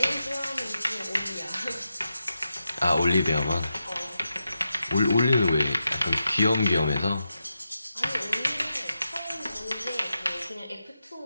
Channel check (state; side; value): inverted; both; correlation -0.88